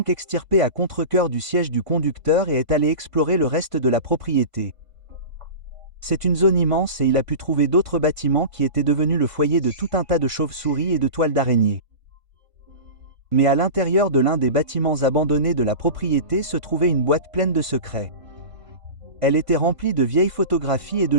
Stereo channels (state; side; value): late; left; 1.5 ms